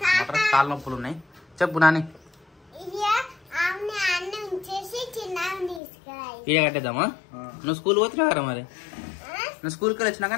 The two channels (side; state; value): right; drops out; at 5.8 s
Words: మొత్తం కాళ్ళ నొప్పులు ఉన్నాయి. చెప్పు నాని. ఇక కట్టేద్దామా? నువ్వు స్కూల్ పోతున్నావు కదా, మరి నువ్వు స్కూల్కి వచ్చినాక